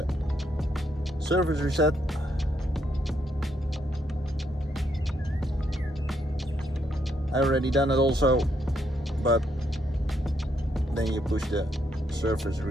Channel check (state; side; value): normal; both; correlation 0.75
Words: service reset. I already done it also, but then you push the surface